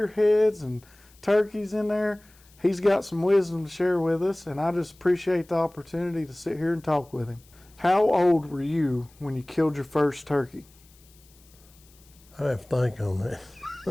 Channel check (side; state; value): left; noise; hiss, 28 dB below the sound